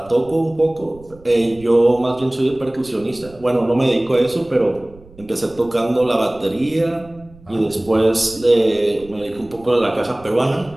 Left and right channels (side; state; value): right; noise; rumble, 23 dB below the sound